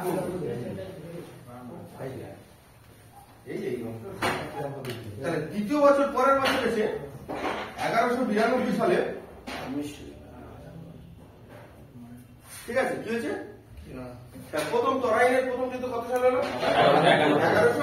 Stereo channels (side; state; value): both; identical; correlation 1.00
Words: করলো। তাহলে দ্বিতীয় বছর পরের বছর এসে 1192 সালে, ঠিক আছে, কি হয়েছে, প্রথম তরাইনের প্রথম যুদ্ধ কত সালে হলো,